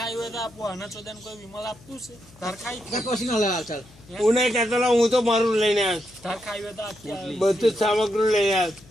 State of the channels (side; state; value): left; noise; hum, 25 dB below the sound